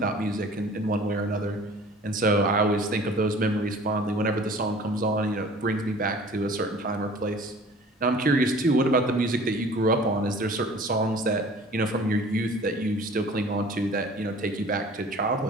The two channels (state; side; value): normal; both; correlation 0.47